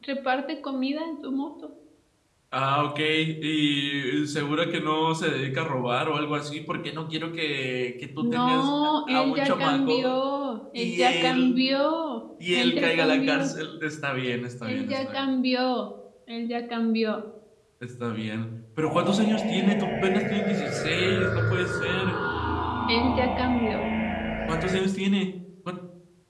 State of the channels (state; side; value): identical; both; correlation 1.00